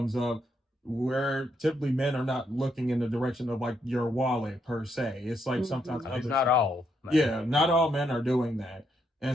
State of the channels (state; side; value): normal; both; correlation 0.77